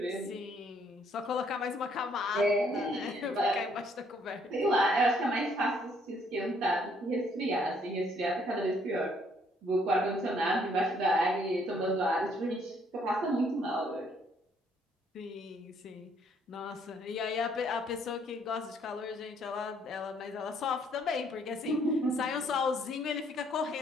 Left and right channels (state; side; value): normal; both; correlation 0.66